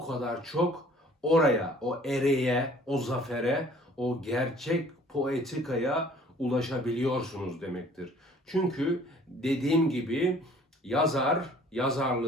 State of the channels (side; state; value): both; normal; correlation 0.54